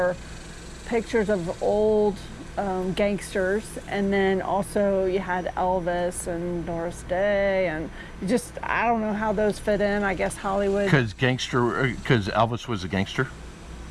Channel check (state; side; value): identical; both; correlation 1.00